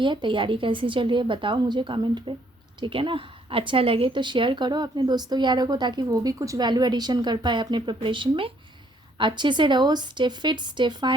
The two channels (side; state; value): both; normal; correlation 0.66